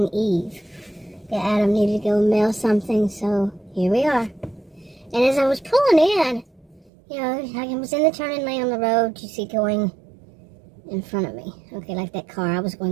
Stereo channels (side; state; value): left; drops out; at 6.9 s